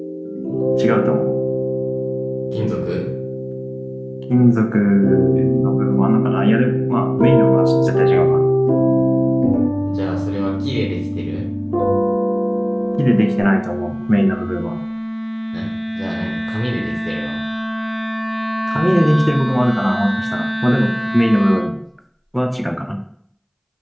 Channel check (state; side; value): identical; both; correlation 1.00